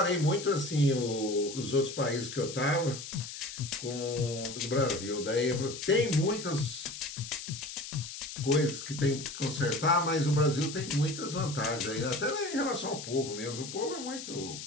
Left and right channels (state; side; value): noise; left; hiss, 10 dB below the sound